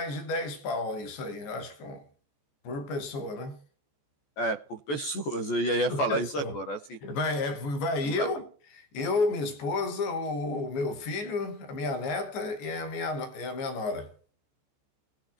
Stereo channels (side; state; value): right; late; 14 ms